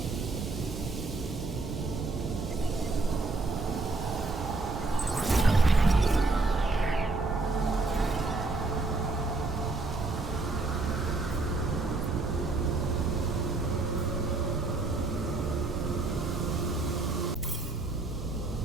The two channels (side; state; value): left; quieter; 3.4 dB